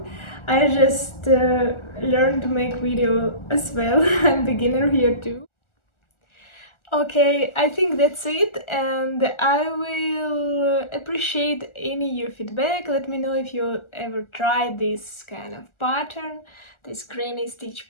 I just learned to make video as well. I'm beginner here too. Okay, I think that's it, and I will appreciate any your feedback. Let me know if you ever tried this kind of pattern. this granny stitch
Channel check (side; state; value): right; late; 1.4 ms